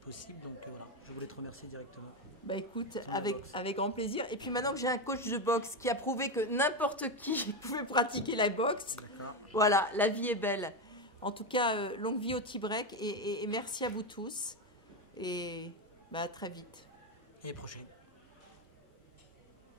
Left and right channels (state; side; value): normal; both; correlation 0.11